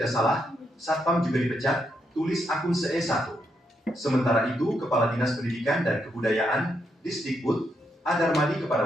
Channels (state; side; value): normal; both; correlation 0.80